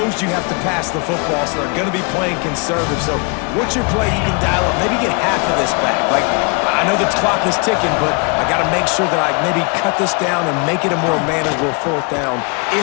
you have to pass the football, so they're going to be playing conservative. So what's your play you can dial up? Maybe get half of this back. Like, I know the clock is ticking, but I got to make sure that I maybe cut this down and make it a more manageable 4th down.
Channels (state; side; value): quieter; right; 32.5 dB